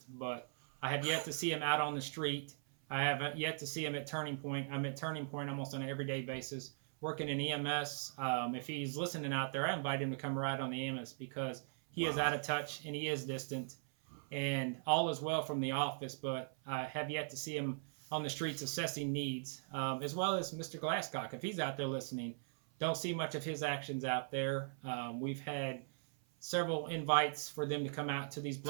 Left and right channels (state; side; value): silent; left; 51 dB below the other